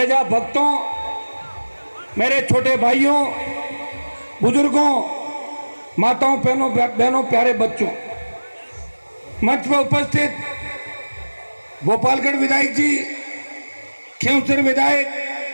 भक्तों, मेरे छोटे भाइयों, बुजुर्गों, माताओं, बहनों, प्यारे बच्चों, मंच पर उपस्थित गोपालगढ़ विधायक जी, खींवसर विधायक,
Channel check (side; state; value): both; inverted; correlation -1.00